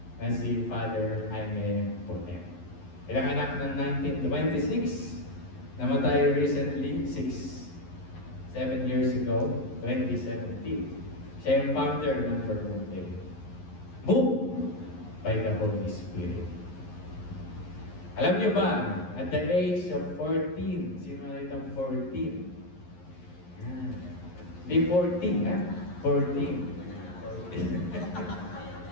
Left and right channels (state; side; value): late; right; 11 ms